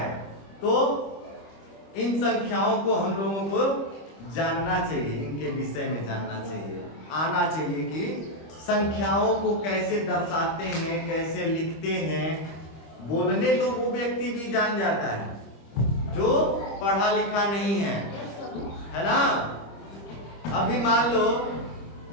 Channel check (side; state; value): right; late; 25 ms